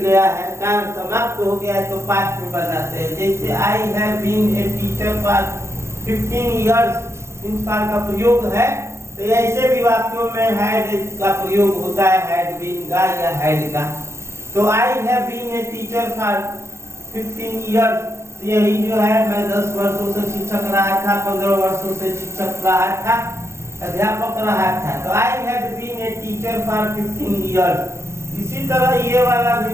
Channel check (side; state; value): left; late; 0.13 ms